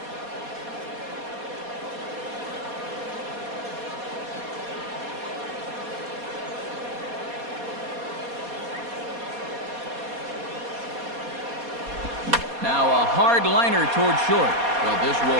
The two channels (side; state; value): left; late; 4.2 ms